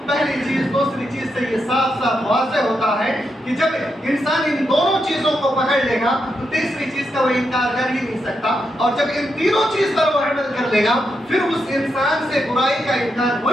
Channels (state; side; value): normal; both; correlation 0.83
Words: پہلی چیز دوسری چیز سے یہ صاف صاف واضح ہوتا ہے کہ جب انسان ان دونوں چیزوں کو پکڑ لے گا تو تیسری چیز کا وہ انکار کر ہی نہیں سکتا، اور جب ان تینوں چیز پر وہ عمل کر لے گا پھر اس انسان سے برائی کا انکار ہو